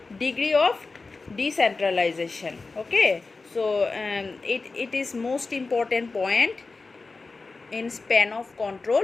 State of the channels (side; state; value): right; quieter; 3.9 dB